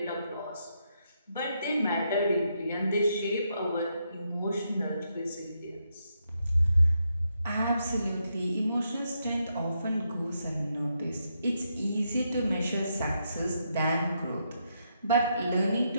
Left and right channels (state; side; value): inverted; both; correlation -0.80